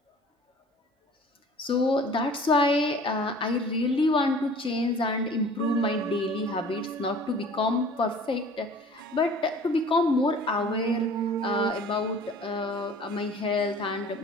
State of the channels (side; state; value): both; normal; correlation 0.47